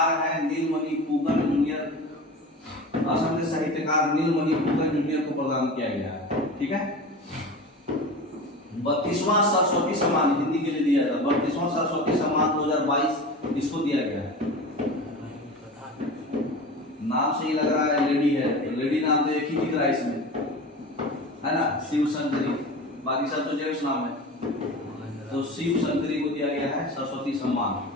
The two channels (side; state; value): both; normal; correlation 0.32